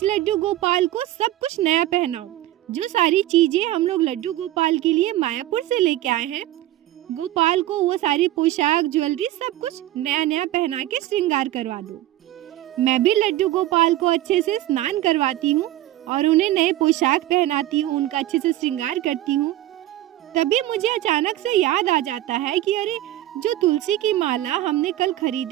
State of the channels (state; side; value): quieter; left; 14.7 dB